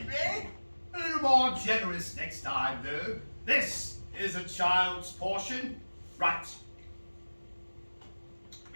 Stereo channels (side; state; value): both; inverted; correlation -1.00